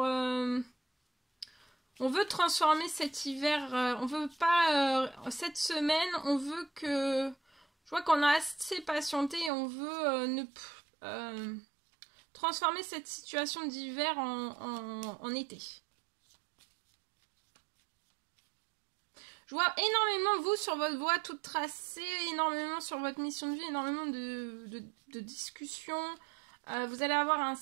veut transformer cet hiver, on veut pas... cette semaine, on veut que... Je vois qu'on a assez patienté et on veut transformer cette situation d'hiver en été. Je vois énormément vous sur votre voie toute tracée, énormément sur votre mission de vie, énormément de discussions. Vous allez avoir un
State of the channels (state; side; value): drops out; left; at 9.5 s